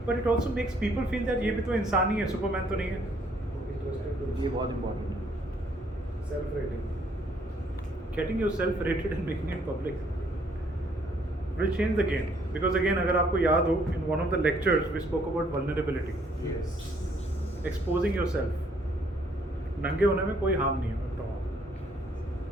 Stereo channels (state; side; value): normal; both; correlation 0.66